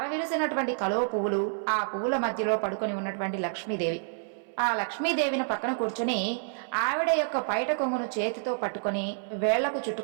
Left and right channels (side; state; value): left; silent; 59 dB below the other